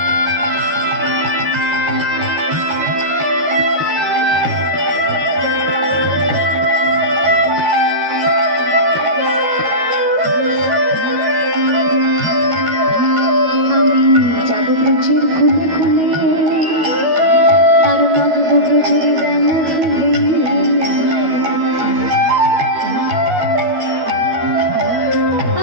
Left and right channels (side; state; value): left; late; 13 ms